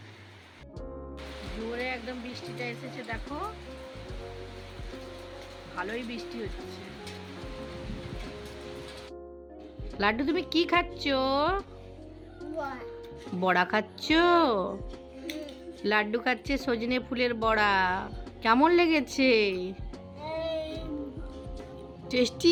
জোরে একদম বৃষ্টিটা এসেছে, দেখো ভালোই বৃষ্টি হচ্ছে। লাড্ডু তুমি কি খাচ্ছ? বড়া খাচ্ছ? লাড্ডু খাচ্ছে সজনে ফুলের বড়া, কেমন লেগেছে?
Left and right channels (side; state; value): both; identical; correlation 1.00